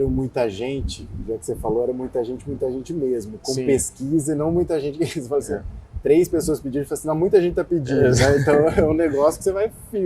muita gente, já que você falou, era muita gente mesmo, com pesquisa e não muita gente que falou assim, 3 pessoas pediram, assim, não, muita gente está pedindo, né? Então é um negócio que você vai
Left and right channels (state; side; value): identical; both; correlation 1.00